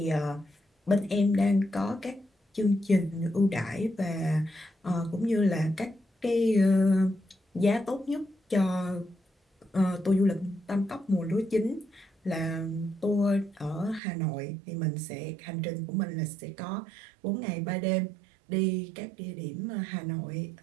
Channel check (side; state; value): left; drops out; at 14.0 s